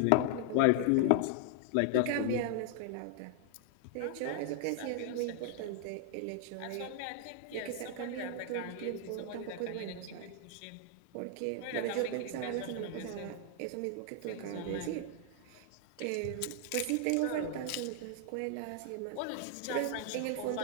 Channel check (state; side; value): different; both; correlation 0.00